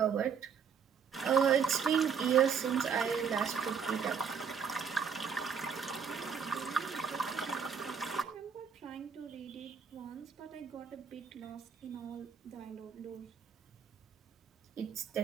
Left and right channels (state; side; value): quieter; left; 6.7 dB